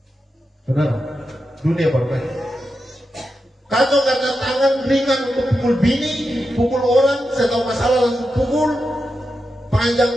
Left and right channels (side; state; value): both; normal; correlation 0.88